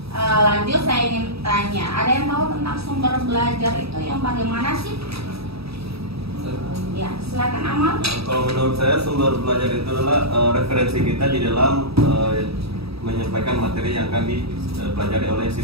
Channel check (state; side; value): late; left; 0.77 ms